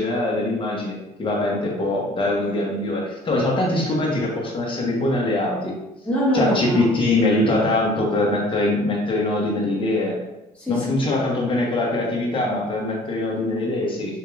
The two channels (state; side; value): normal; both; correlation 0.52